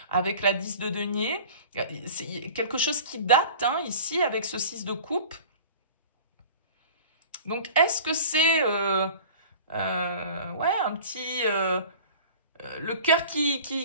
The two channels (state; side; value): inverted; both; correlation -0.42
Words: avec la 10 de denier. C'est quelque chose qui date hein, ici avec ce 6 de coupe. Donc est-ce que c'est ouais, un petit le cœur